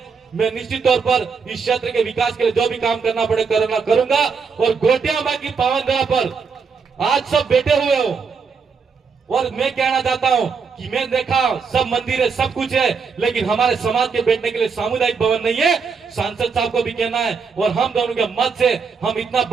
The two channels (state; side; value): quieter; left; 5.5 dB